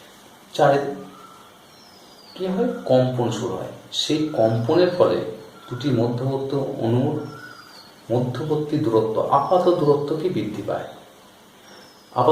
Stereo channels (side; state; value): both; identical; correlation 1.00